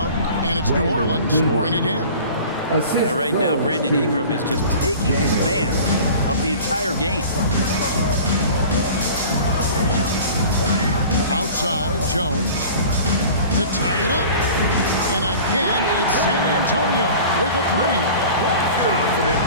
and it's New Orleans scoring again. Right now, Brandon Ingram is just taking command of the entire game. Outside, Jones to tie it up. And again, it's San Antonio with a three. Confident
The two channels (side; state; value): both; inverted; correlation -0.41